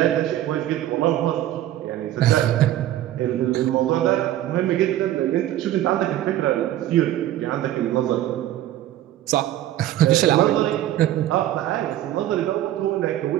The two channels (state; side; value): quieter; left; 13.3 dB